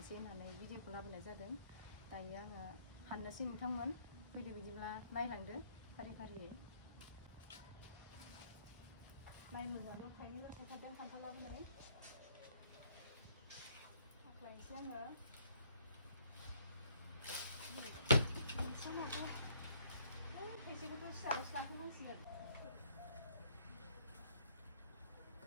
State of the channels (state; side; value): inverted; both; correlation -0.65